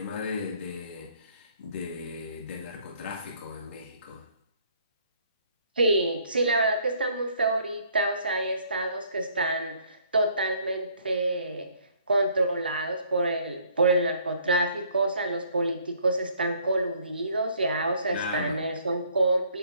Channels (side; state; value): both; inverted; correlation -0.62